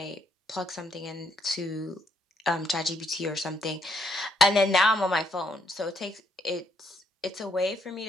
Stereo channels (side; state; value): both; normal; correlation 0.72